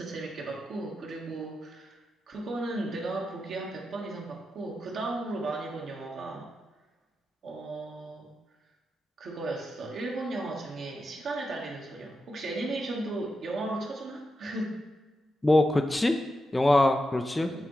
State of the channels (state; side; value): normal; both; correlation 0.88